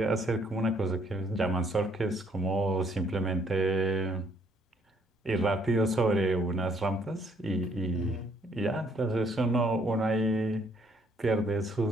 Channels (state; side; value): normal; both; correlation 0.67